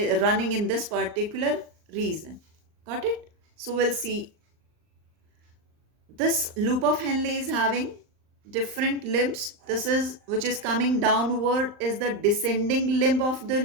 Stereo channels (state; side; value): late; left; 39 ms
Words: running in this particular region. Got it? So we'll see this loop of Henle is having different limbs. This is which is coming downward is the descending limb of the